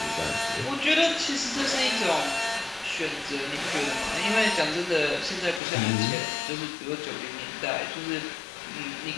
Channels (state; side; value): drops out; right; at 5.6 s